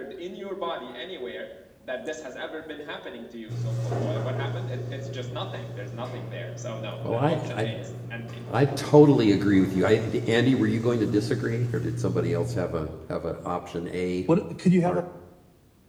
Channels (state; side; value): identical; both; correlation 1.00